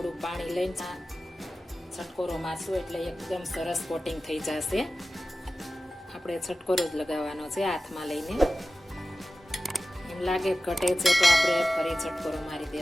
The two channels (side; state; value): both; normal; correlation 0.95